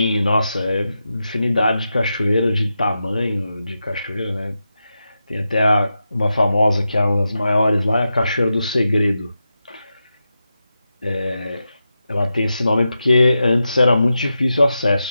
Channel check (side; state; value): both; inverted; correlation -0.89